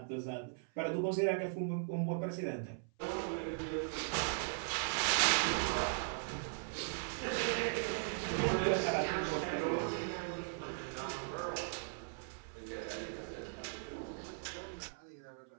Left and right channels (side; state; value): left; silent; 52 dB below the other